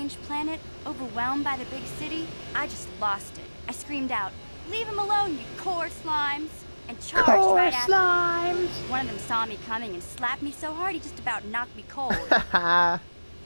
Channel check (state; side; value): inverted; both; correlation -1.00